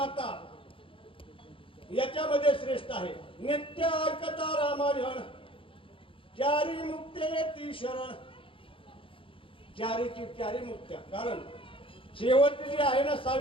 याच्यामध्ये श्रेष्ठ आहे. नित्य ऐकता रामायण, चारी मुक्ते ती शरण. चारीची चारी मुक्त्या. कारण शेवटची जी आहे ना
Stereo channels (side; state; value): right; late; 0.26 ms